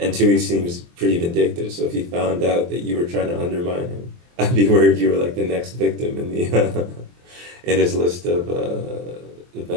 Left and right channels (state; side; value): late; left; 23 ms